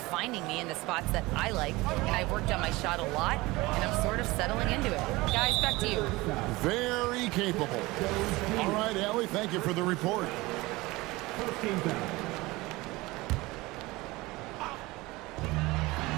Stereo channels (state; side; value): quieter; left; 21.2 dB